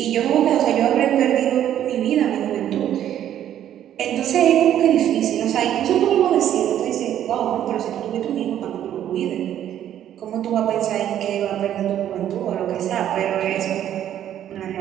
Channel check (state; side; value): quieter; left; 10.9 dB